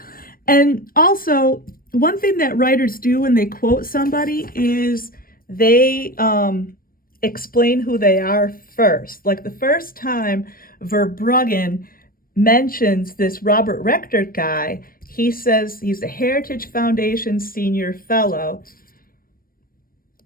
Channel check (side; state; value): right; late; 0.42 ms